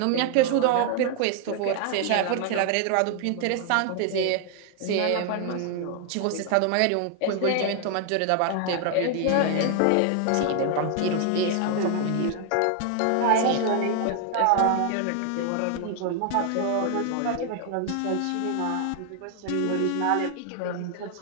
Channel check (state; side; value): different; both; correlation 0.00